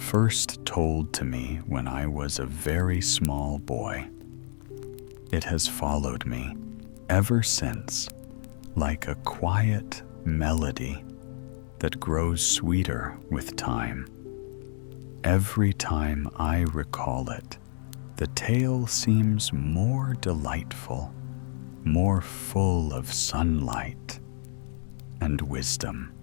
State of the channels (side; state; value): right; silent; digital silence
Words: told to me when I was a very small boy. It has followed me ever since, like a quiet melody that grows sweeter with time. Every time I recall it, the tale seems more delightful, more full of sunlight and wisdom.